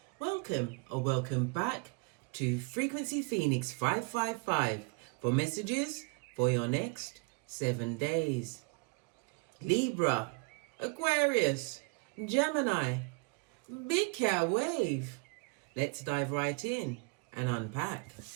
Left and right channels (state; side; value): quieter; left; 31.6 dB